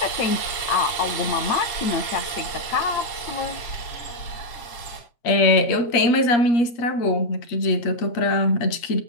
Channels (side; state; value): right; late; 8.5 ms